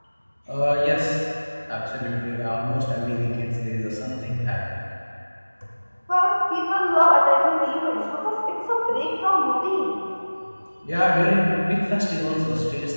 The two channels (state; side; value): inverted; both; correlation -1.00